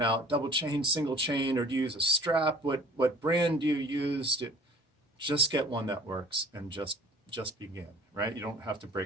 out, double chain, single chain, or do you use a strap? What brand do you use? Just get one that works and just begin, right? You don't have to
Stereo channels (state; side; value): normal; both; correlation 0.48